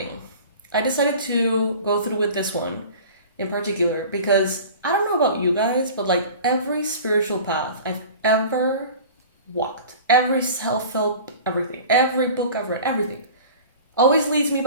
I decided to go through with this one in particular because I don't know about you guys, but like every spiritual path I've ever walked, every self-help, everything, every book I've read, everything always leads me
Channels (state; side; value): inverted; both; correlation -0.40